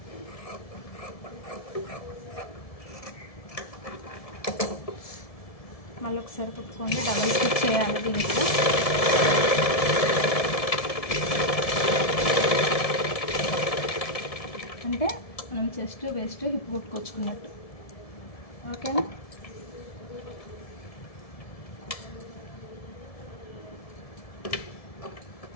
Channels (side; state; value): right; late; 1.7 ms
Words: మళ్ళీ ఒకసారి కుట్టుకోండి. డబల్ స్టిచ్ చేయాలి దీంట్లో. అంటే మనం చెస్ట్ వెస్ట్ హిప్ కుట్టుకొచ్చుకున్నట్టు. ఓకేనా,